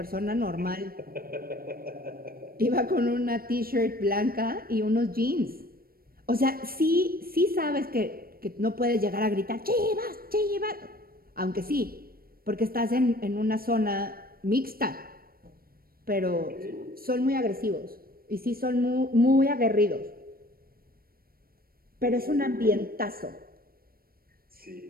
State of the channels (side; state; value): left; late; 0.43 ms